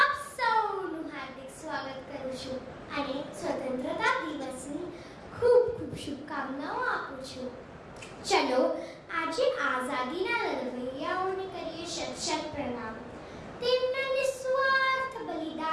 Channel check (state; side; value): identical; both; correlation 1.00